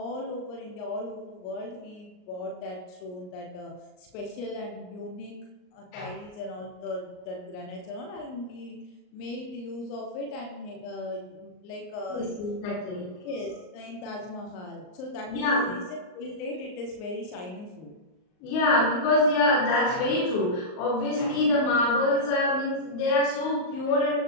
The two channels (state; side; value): late; right; 38 ms